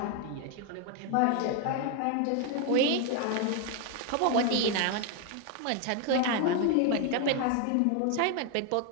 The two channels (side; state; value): both; different; correlation 0.01